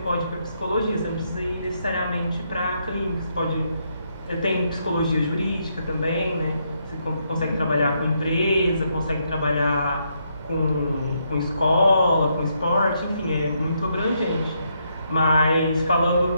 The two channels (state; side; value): inverted; both; correlation -0.77